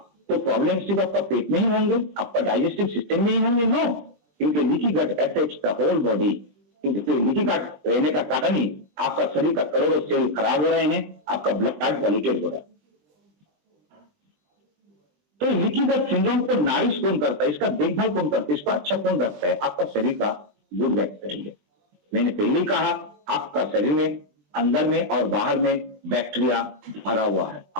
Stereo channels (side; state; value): left; late; 20 ms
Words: तो प्रॉब्लम सिर्फ आपका पेट में ही होंगे, आपका डाइजेस्टिव सिस्टम में ही होंगे? नो, क्योंकि leaky gut affects the whole body. क्योंकि लीकी गट रहने का कारण ही आपका शरीर का करोड़ों सेल खराब हो रहे हैं, आपका ब्लड पॉल्यूटेड हो रहा है। तो लीकी गट सिंड्रोम को नारिश कौन करता है, इसका देखभाल कौन करता है, इसका अच्छा कौन रखता है? आपका शरीर का गुड बैक्टीरिया। मैंने पहले ही कहा आपका शरीर में अंदर में और बाहर में बैक्टीरिया भरा हुआ है,